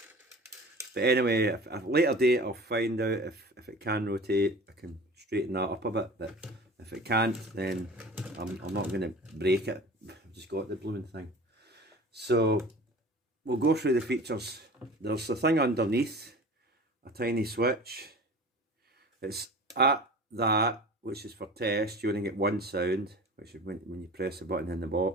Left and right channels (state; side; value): normal; both; correlation 0.39